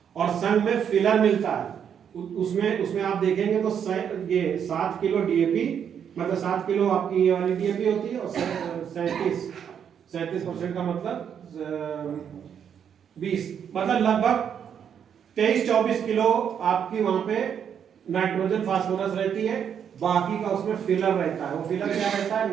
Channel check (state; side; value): quieter; left; 8.2 dB